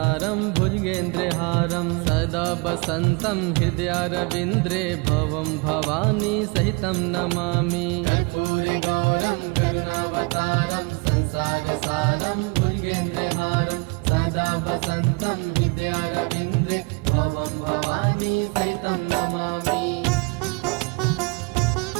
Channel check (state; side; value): quieter; left; 28.9 dB